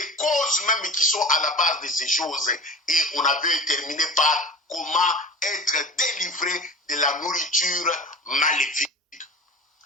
causes même qui sont à la base de ces choses. Et on avait terminé par comment être délivré de la nourriture maléfique.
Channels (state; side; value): normal; both; correlation 0.36